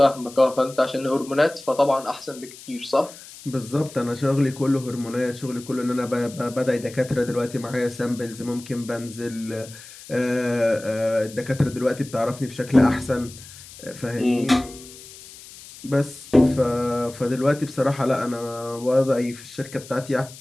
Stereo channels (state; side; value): noise; left; hiss, 18 dB below the sound